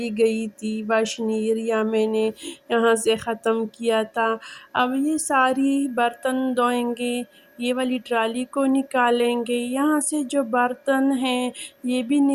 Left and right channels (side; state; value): both; identical; correlation 1.00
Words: گئی تھی، واشنگ ایریا میں نے یہاں سے ختم کیا تھا۔ اب یہ ساری برتن دھوئیں گے، یہ والی ٹرالی کو نکالیں گے، یہاں سے جو برتن ہیں یہ بھی